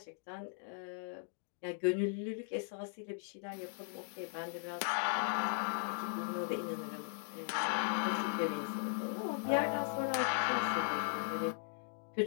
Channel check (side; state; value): right; silent; digital silence